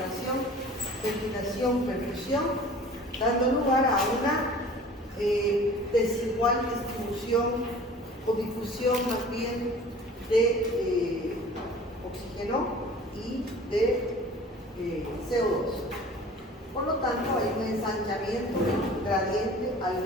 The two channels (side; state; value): both; normal; correlation 0.45